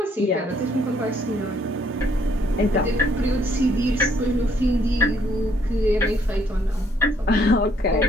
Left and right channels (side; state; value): both; normal; correlation 0.67